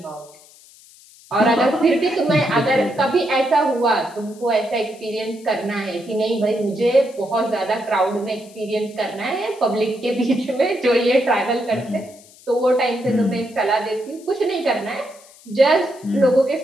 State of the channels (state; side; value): noise; left; hiss, 24 dB below the sound